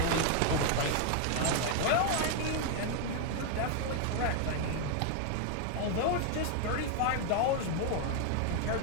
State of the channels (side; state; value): both; different; correlation 0.00